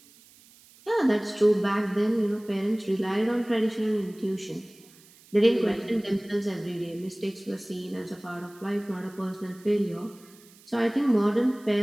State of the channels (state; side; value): noise; right; hiss, 26 dB below the sound